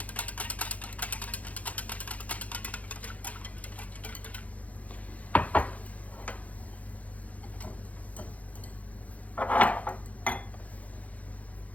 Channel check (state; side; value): late; right; 0.070 ms